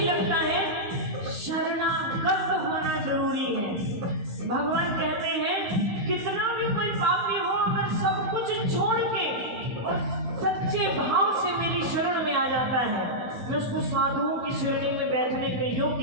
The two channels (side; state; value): left; late; 16 ms